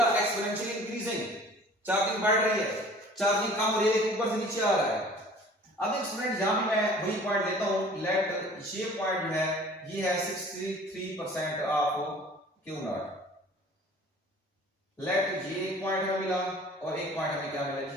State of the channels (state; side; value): normal; both; correlation 0.48